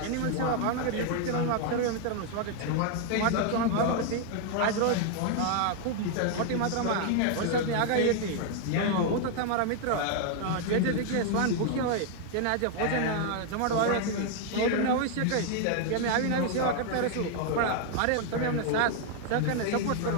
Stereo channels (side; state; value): both; different; correlation 0.00